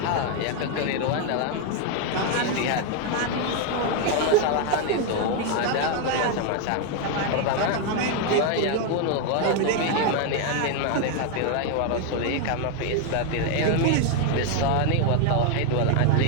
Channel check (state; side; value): different; both; correlation 0.01